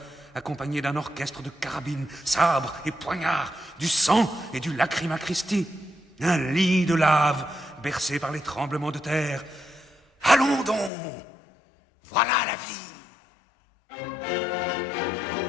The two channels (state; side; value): drops out; right; at 10.9 s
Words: accompagné d'un orchestre de carabines, sabres et poignards, du sang et du lacryma Christi, un lit de lave bercé par les tremblements de terre. Allons donc, voilà la vie.